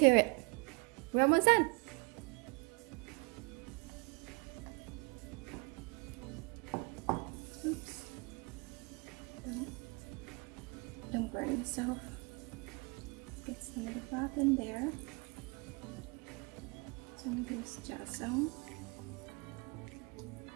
it. We're almost done. Oops. Don't burn yourself. Get some of the broth in there. Some of this jasmine.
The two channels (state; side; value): quieter; left; 30.1 dB